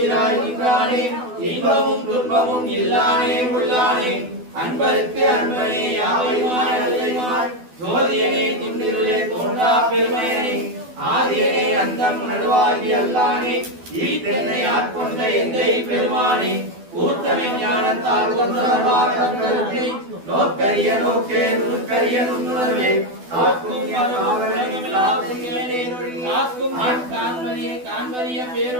நின்றானே இன்பமும் துன்பமும் இல்லானே உள்ளானே அன்பருக்கு அன்பனே யாவைமாய் அல்லைமாய் ஜோதியனே திண்டிருளே தோன்றா பெருமையனே ஆதியனே அந்தம் நடுவாகி அல்லானே ஈத்தென்னை ஆட்கொண்ட எந்தை பெருமானே கூட்டமை ஞானத்தால் கொண்டவர்வார் தங்களுக்கு நோக்கரிய நோக்கே நுண்கரிய நுண்ணுணர்வே காக்கும் காண்பரிய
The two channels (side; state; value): left; late; 12 ms